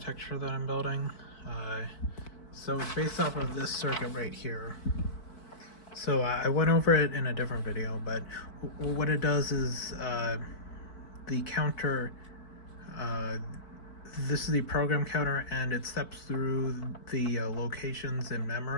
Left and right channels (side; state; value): right; late; 4.5 ms